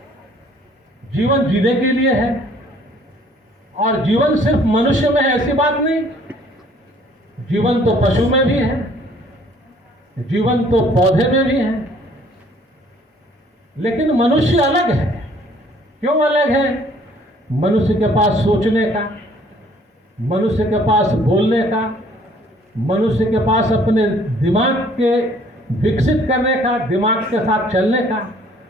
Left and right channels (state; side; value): normal; both; correlation 0.58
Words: जीवन जीने के लिए है, और जीवन सिर्फ मनुष्य में है ऐसी बात नहीं, जीवन तो पशु में भी है, जीवन तो पौधे में भी है। लेकिन मनुष्य अलग है। क्यों अलग है? मनुष्य के पास सोचने का, मनुष्य के पास बोलने का, मनुष्य के पास अपने दिमाग के विकसित करने का, दिमाग के साथ चलने का,